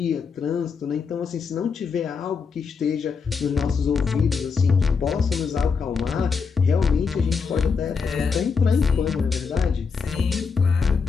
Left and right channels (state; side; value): quieter; right; 5.5 dB